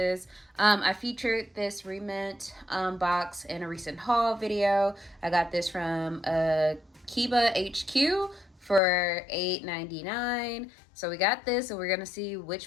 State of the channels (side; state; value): right; drops out; at 8.8 s